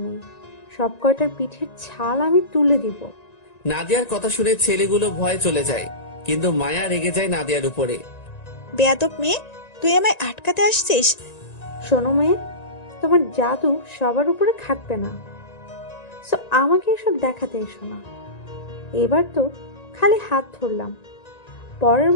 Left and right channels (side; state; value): right; late; 1.9 ms